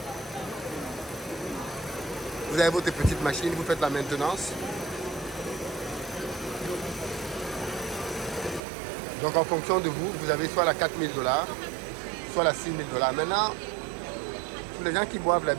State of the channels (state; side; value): drops out; left; at 8.6 s